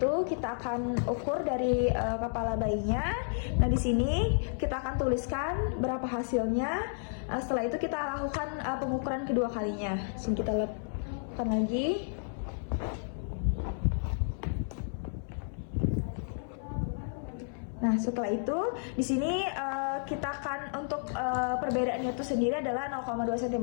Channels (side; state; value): right; silent; 57 dB below the other